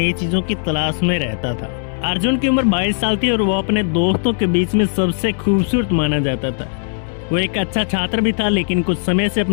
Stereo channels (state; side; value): silent; right; 61 dB below the other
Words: चीजों की तलाश में रहता था। अर्जुन की उम्र 22 साल थी और वो अपने दोस्तों के बीच में सबसे खूबसूरत माना जाता था। वो एक अच्छा छात्र भी था, लेकिन कुछ समय से